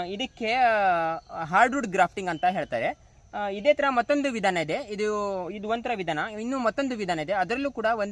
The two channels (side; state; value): both; identical; correlation 1.00